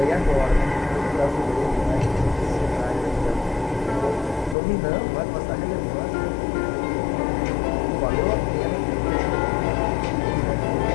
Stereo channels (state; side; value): drops out; right; at 4.5 s